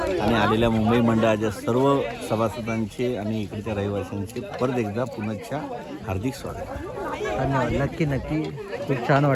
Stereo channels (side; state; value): both; identical; correlation 1.00